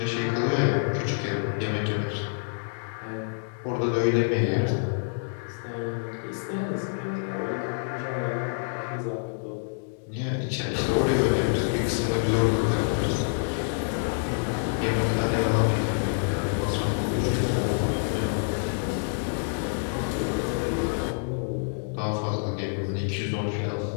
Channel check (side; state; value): right; silent; digital silence